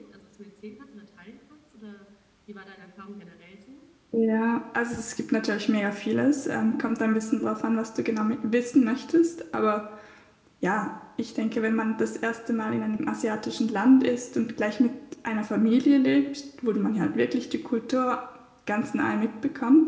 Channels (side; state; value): both; identical; correlation 1.00